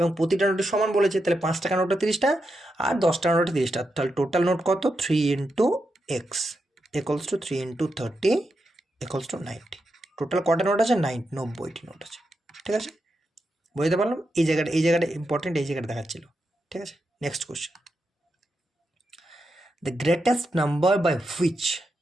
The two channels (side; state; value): both; normal; correlation 0.86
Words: প্রতিটা নোটের সমান বলেছে, তাহলে 5 টাকার নোটটা 30টা আর 10 টাকার নোটটা 30টা, তাহলে টোটাল নোট কত? 3 into x equals to 3 into 30 equals to 90। Total কটা নোট আছে? 90টি নোট আছে, ঠিক আছে। বুঝতে পারলাম? এই জায়গাটা ইম্পর্টেন্ট, এই জায়গাটা দেখাচ্ছিল, ঠিক আছে। Next question, the greatest number by which